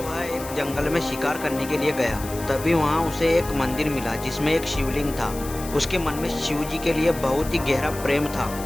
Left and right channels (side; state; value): left; noise; hiss, 13 dB below the sound